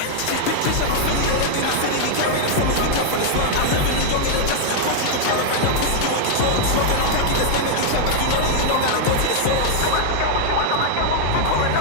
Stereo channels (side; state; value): both; different; correlation -0.01